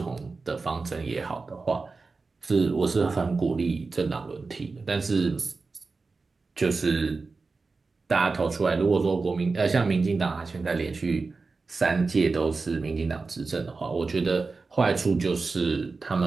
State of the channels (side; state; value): left; quieter; 4.1 dB